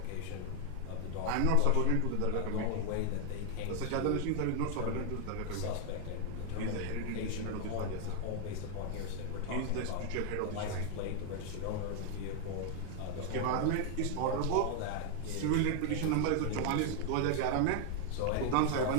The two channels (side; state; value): both; different; correlation 0.00